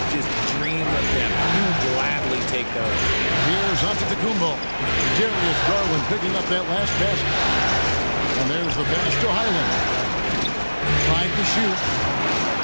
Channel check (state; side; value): inverted; both; correlation -1.00